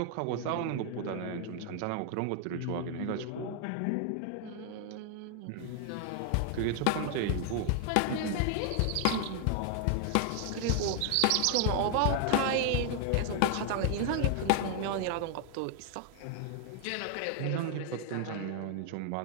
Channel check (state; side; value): different; both; correlation 0.00